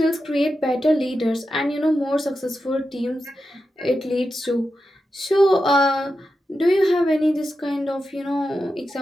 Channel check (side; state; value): both; normal; correlation 0.89